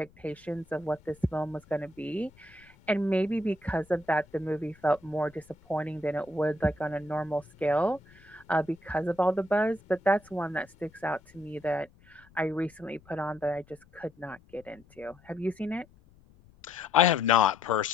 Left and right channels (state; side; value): noise; left; rumble, 28 dB below the sound